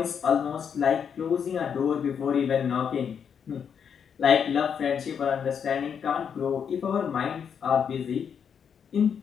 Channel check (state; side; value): quieter; right; 7.4 dB